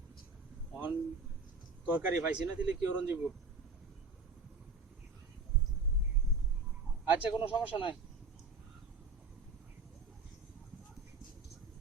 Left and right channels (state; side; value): quieter; left; 4.0 dB